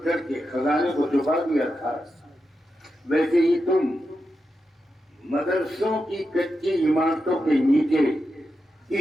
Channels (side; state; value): both; normal; correlation 0.88